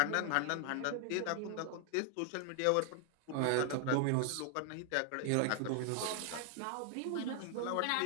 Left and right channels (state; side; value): different; both; correlation 0.00